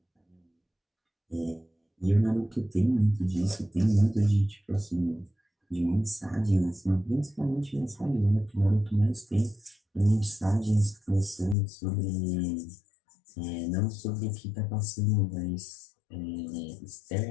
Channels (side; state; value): right; drops out; at 11.6 s